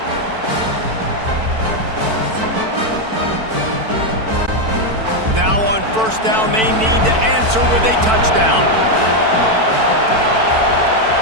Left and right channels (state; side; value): late; left; 4.5 ms